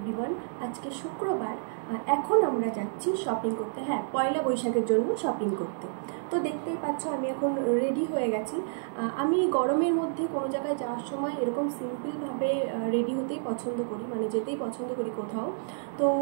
আজকে শুক্রবার, এখন আমরা যাচ্ছি শপিং করতে। হ্যাঁ, পয়লা বৈশাখের জন্য শপিং করতে। তো দেখতেই পাচ্ছ আমি এখন রেডি হয়ে গেছি। আমি গরমের মধ্যে কোনো জায়গায় যাওয়ার সময় এরকম সিম্পলভাবে রেডি হতেই পছন্দ করি, মানে যেতেই পছন্দ করি কোথাও। তো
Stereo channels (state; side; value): silent; left; digital silence